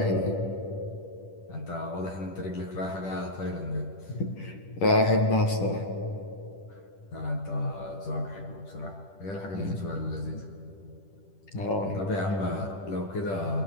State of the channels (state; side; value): late; right; 10 ms